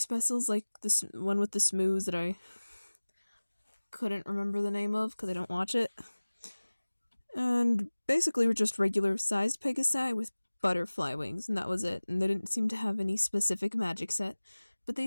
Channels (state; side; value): inverted; both; correlation -1.00